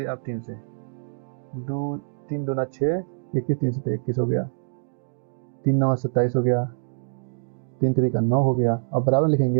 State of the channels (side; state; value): left; silent; digital silence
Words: आप 3 से, 2 3 दूना 6, 21 3 से 21 हो गया, 3 9 27 हो गया, 3 3 का 9 हो गया। अब बराबर लिखेंगे